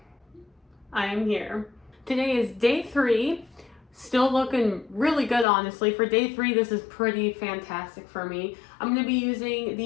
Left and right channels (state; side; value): drops out; right; at 5.5 s